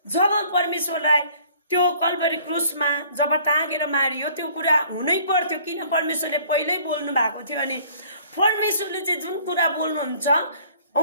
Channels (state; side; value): inverted; both; correlation -0.55